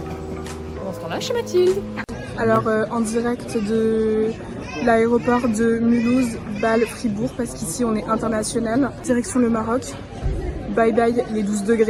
Pendant ce temps-là, chez Mathilde. Alors en direct de l'aéroport de Mulhouse, Bâle, Fribourg, parce qu'ici on est international. Direction le Maroc. Bye bye les 12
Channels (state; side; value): identical; both; correlation 1.00